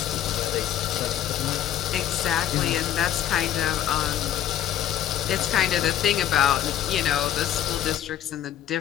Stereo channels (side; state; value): right; quieter; 11.2 dB